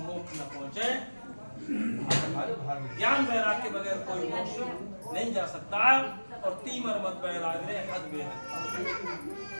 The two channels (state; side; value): inverted; both; correlation -1.00